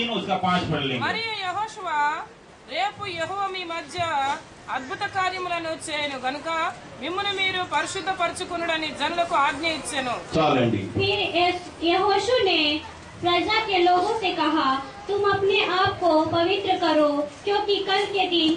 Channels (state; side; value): identical; both; correlation 1.00